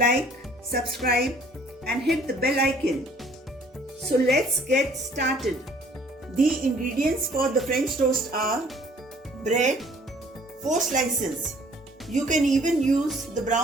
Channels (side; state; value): both; normal; correlation 0.56